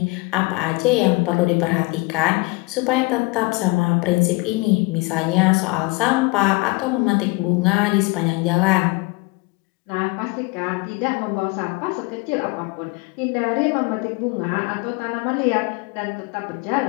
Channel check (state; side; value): quieter; right; 24.7 dB